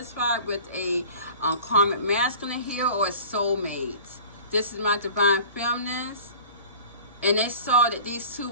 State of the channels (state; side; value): inverted; both; correlation -0.43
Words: with a karmic masculine here or a soulmate. This is my divine feminist, and they saw that these two